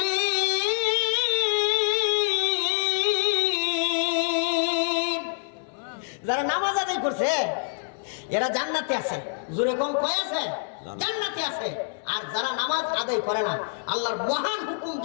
যারা নামাজ আদায় করছে এরা জান্নাতে আছে। জোরে কম কয় আছে? জান্নাতে আছে। আর যারা নামাজ আদায় করে না, আল্লাহর মহান হুকুম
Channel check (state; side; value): silent; right; digital silence